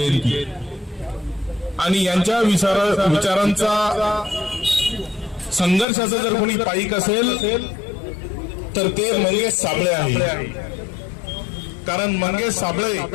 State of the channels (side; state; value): right; drops out; at 5.9 s